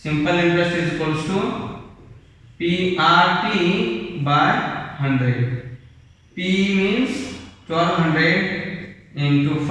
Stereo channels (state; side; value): identical; both; correlation 1.00